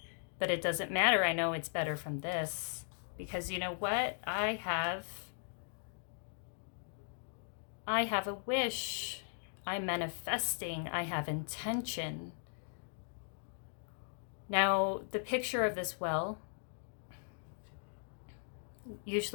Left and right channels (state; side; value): silent; right; digital silence